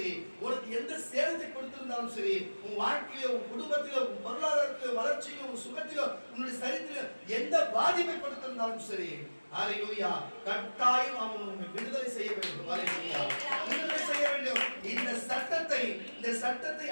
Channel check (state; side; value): inverted; both; correlation -1.00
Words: உனக்கு எந்த சேதத்தை கொடுத்திருந்தாலும் சரி, உன் வாழ்க்கையில, உன் குடும்பத்தில, உன் பொருளாதாரத்தில, வளர்ச்சியில, உன் சுகத்தில, உன்னுடைய சரீரத்தில எந்த பாதிப்பை கொடுத்திருந்தாலும் சரி, அல்லேலூயா, கட்டாயம் அவன் உன்னை விடுதலை செய்ய வேண்டும். அல்லேலூயா, விடுதலை செய்ய வேண்டும். இந்த சட்டத்தை